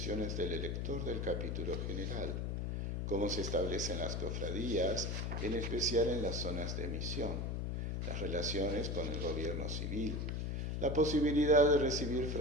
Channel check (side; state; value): left; noise; hum, 1 dB below the sound